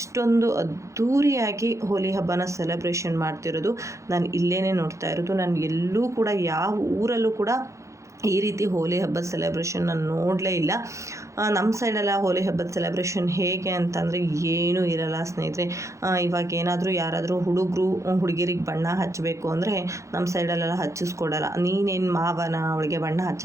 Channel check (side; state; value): left; late; 0.15 ms